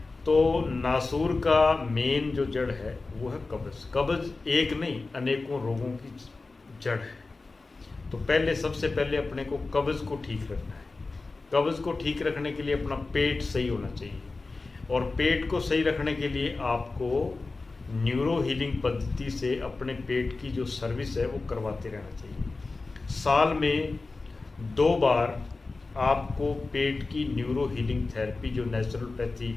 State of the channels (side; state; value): right; quieter; 3.6 dB